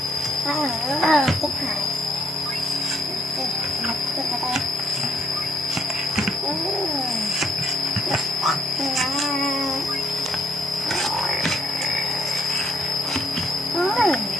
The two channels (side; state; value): both; normal; correlation 0.69